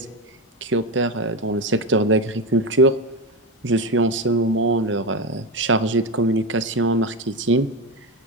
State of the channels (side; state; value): both; normal; correlation 0.16